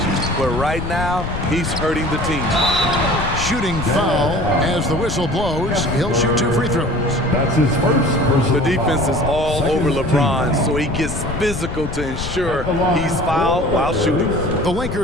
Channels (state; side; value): noise; left; rumble, 7 dB below the sound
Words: But right now, he's hurting the team. Shooting foul as the whistle blows. He'll shoot 2 free throws. That's his first personal The defense is all Second over LeBron, team. so he gets physical to ensure he's fouled while shooting. The